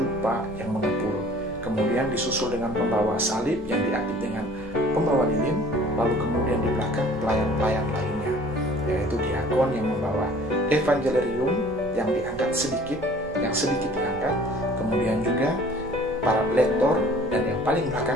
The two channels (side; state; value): right; noise; rumble, 19 dB below the sound